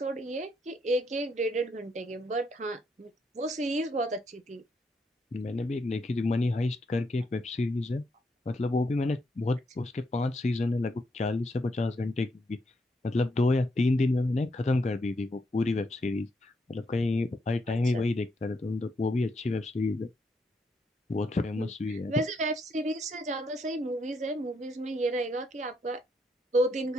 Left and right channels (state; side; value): normal; both; correlation 0.77